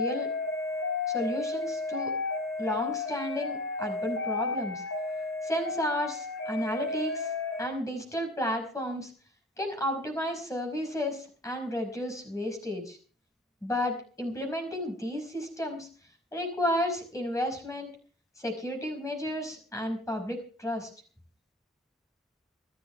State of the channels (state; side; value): normal; both; correlation 0.40